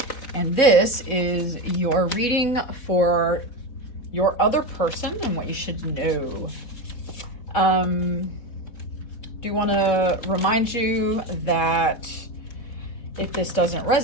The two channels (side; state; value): right; late; 4.1 ms